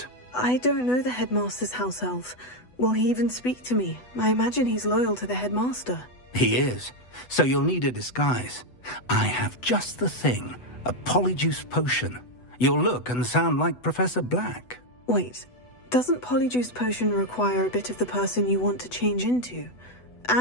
I don't know the headmaster's house elf. Will he even speak to me? I imagine he's loyal to the headmaster. He is. So you'll need a disguise. I have just the thing. A polyjuice potion. You'll look and sound like Professor Black. Wait, doesn't polyjuice potion require a bit of the person you want to change into?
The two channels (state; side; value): late; right; 8.1 ms